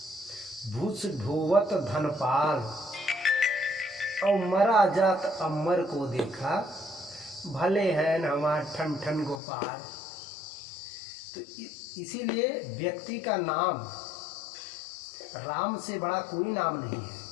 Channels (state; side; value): drops out; right; at 9.4 s